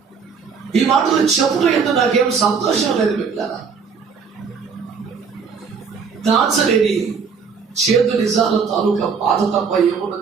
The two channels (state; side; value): quieter; left; 5.7 dB